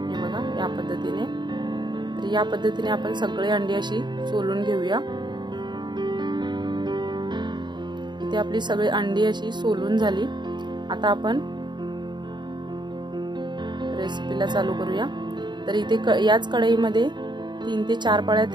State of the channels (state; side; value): late; left; 0.22 ms